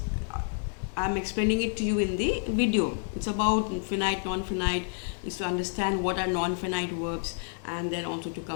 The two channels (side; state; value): right; silent; 58 dB below the other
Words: I'm explaining it to you in the video. It's about finite, non-finite, is to understand what are non-finite verbs, and then also to